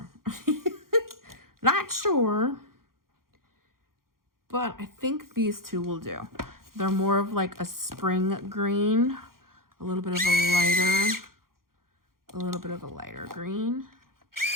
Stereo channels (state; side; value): late; left; 0.92 ms